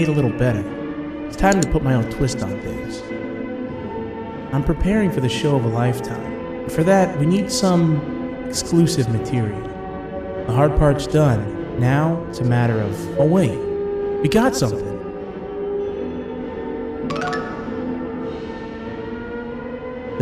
a little better. It's time to put my own twist on things. I'm preparing for the show of a lifetime. For that, we need some exclusive material. The hard part's done. Now, it's a matter of, oh wait, we got something.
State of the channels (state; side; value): identical; both; correlation 1.00